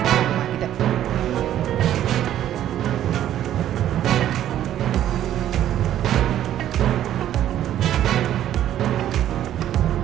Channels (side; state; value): left; quieter; 11.7 dB